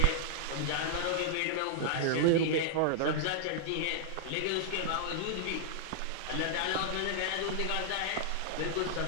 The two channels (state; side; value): different; both; correlation -0.01